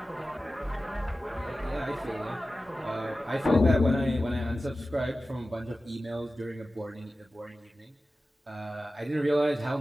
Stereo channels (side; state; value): both; normal; correlation 0.95